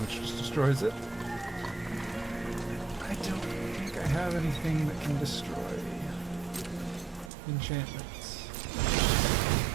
which just destroys it. I don't think I have anything that can destroy enchantments.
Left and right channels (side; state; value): left; drops out; at 7.3 s